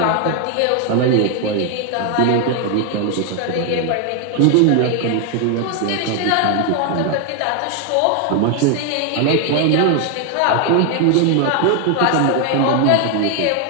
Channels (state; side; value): different; both; correlation 0.01